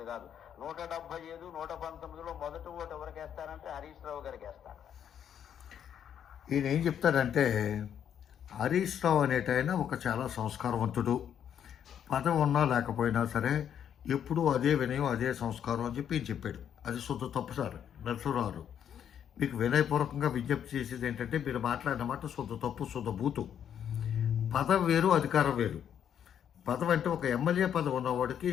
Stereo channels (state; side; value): quieter; right; 9.1 dB